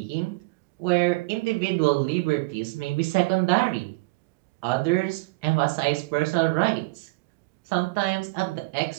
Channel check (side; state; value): left; quieter; 24.2 dB